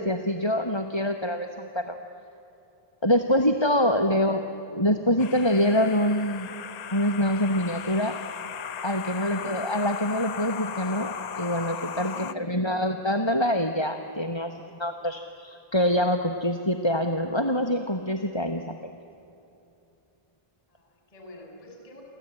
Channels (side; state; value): right; late; 1.8 ms